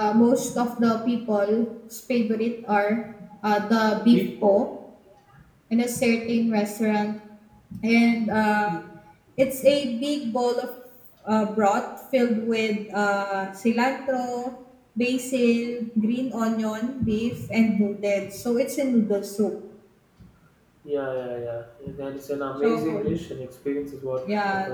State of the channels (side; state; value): both; identical; correlation 1.00